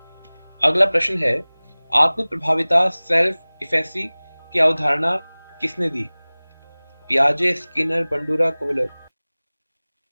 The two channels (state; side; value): inverted; both; correlation -1.00